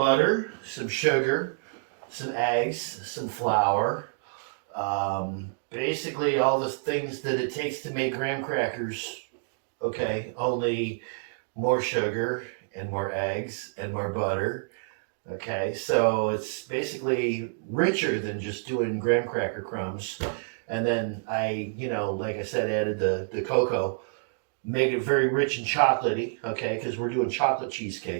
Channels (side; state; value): left; silent; digital silence